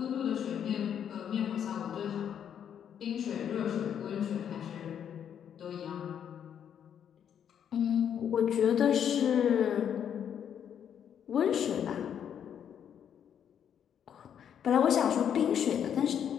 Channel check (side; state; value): right; quieter; 8.8 dB